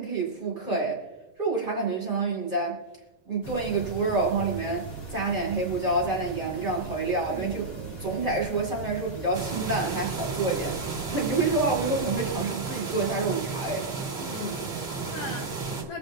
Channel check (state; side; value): quieter; left; 3.1 dB